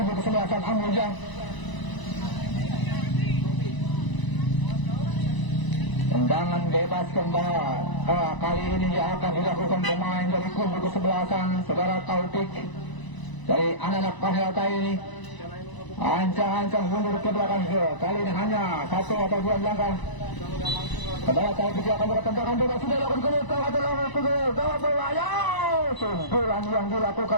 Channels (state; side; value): late; right; 1.0 ms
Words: kesebelasan Amulya. Tendangan bebas kembali kali ini yang akan dilakukan pemain dari kubu kesebelasan saudara Taufik dari anak-anak Pak Helta ini. Ancang-ancang mundur ke belakang. Kali ini hanya 1 atau 2 langkah. Saudara Taufik akan bertendangan bebas. Sudah dilakukan gawat berbahaya. Sundulan yang